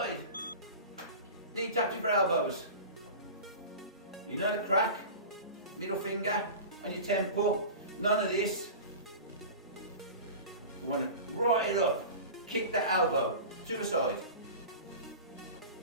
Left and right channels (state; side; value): inverted; both; correlation -0.34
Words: Knee touching for elbows. You know the crack? Middle finger on your temple. None of this. We want to right it up. Kick that elbow to the side.